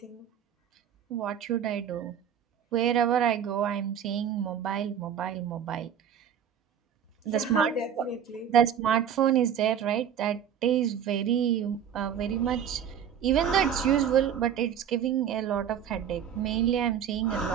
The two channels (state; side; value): quieter; left; 8.8 dB